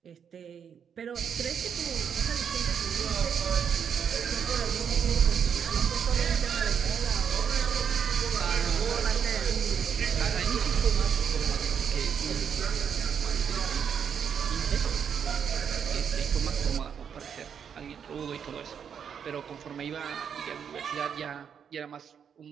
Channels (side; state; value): left; quieter; 7.6 dB